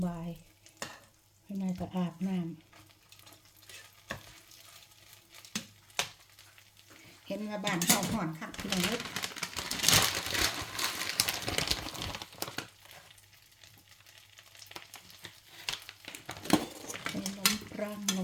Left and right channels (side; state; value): both; identical; correlation 1.00